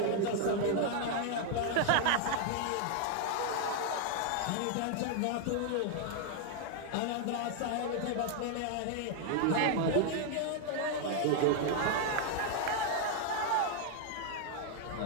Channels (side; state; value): both; different; correlation 0.00